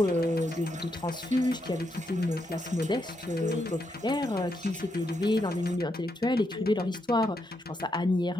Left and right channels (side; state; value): both; normal; correlation 0.80